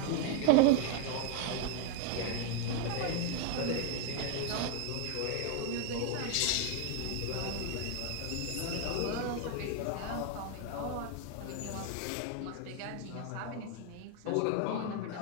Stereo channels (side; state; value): both; different; correlation 0.01